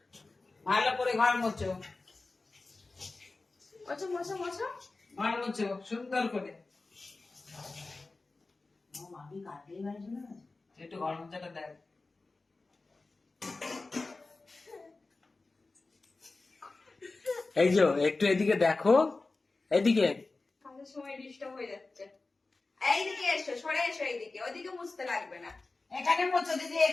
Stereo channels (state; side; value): quieter; right; 3.5 dB